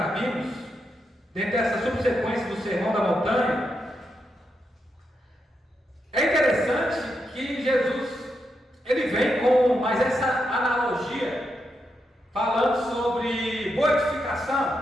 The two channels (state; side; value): normal; both; correlation 0.84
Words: vimos, dentro dessa subsequência do Sermão da Montanha, é interessante que Jesus ele vem com mais essa analogia, falando sobre boa